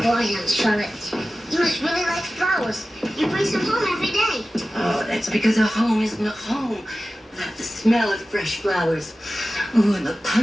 Aunt Charlotte, you must really like flowers. You bring some home every day. Oh, that's because a home isn't a home without the smell of fresh flowers. Ooh, and the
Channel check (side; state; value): both; normal; correlation 0.95